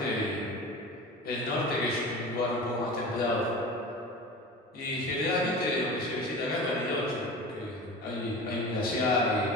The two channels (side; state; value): both; normal; correlation 0.34